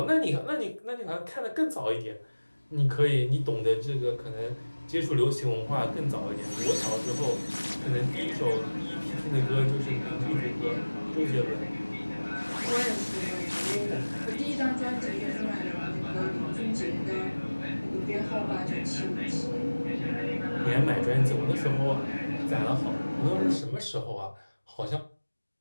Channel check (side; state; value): both; inverted; correlation -1.00